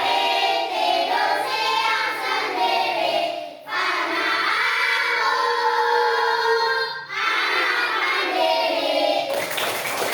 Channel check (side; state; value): both; identical; correlation 1.00